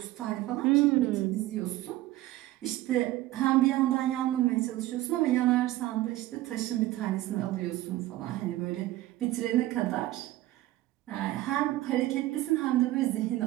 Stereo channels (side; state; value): left; quieter; 16.2 dB